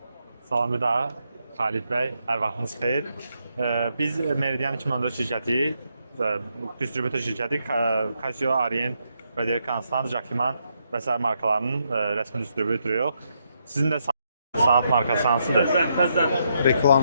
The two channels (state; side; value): inverted; both; correlation -0.79